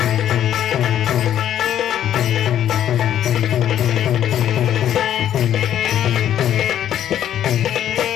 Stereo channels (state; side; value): quieter; right; 10.8 dB